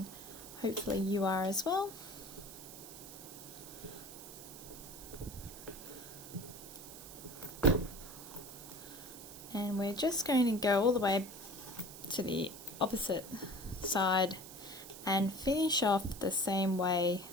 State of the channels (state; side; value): noise; right; hiss, 14 dB below the sound